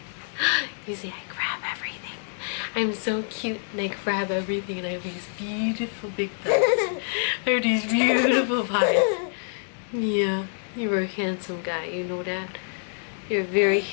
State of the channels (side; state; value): right; silent; 61 dB below the other